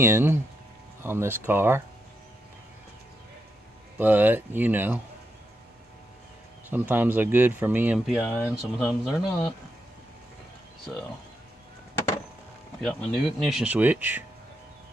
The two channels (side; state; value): both; normal; correlation 0.83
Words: on this car. But, you know, sometimes they're good from EMPI and sometimes they're not. So, got my new ignition switch.